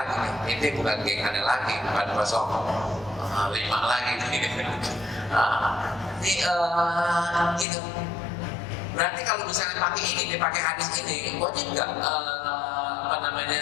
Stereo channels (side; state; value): right; drops out; at 7.7 s